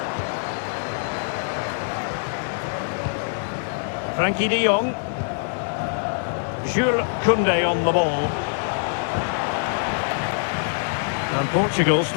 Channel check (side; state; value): right; silent; digital silence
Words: Frankie de Jong. Jules Koundé on the ball. And Portugal